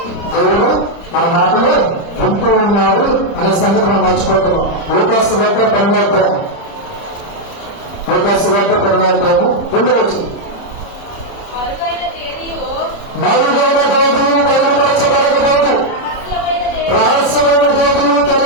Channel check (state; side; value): late; right; 30 ms